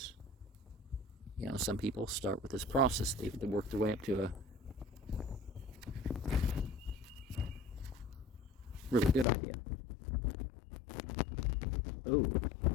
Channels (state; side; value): drops out; right; at 9.2 s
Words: You know, some people start with this process, they work their way up to a really good idea. Oh,